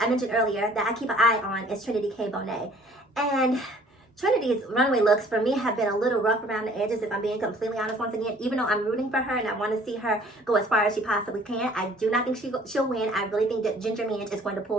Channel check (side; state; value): both; normal; correlation 0.54